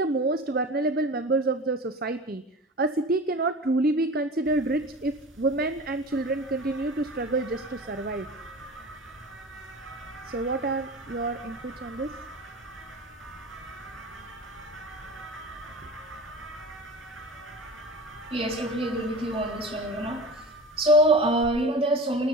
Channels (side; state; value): both; normal; correlation 0.34